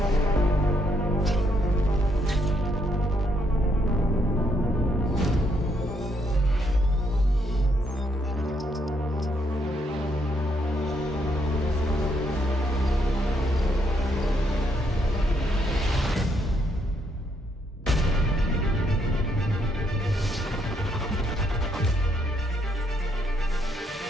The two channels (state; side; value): normal; both; correlation 0.74